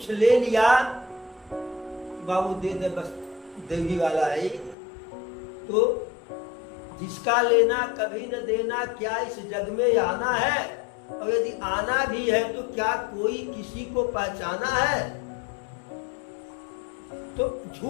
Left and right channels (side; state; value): right; drops out; at 4.8 s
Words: ले लिया, बाबू दे दे बस देवी वाला है, तो जिसका लेना कभी न देना, क्या इस जग में आना है? और यदि आना भी है तो क्या कोई किसी को पहचाना है? तो